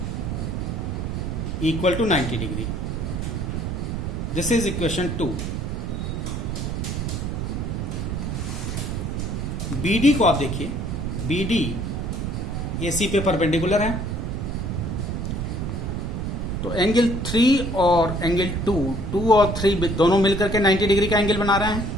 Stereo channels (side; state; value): right; noise; rumble, 2 dB below the sound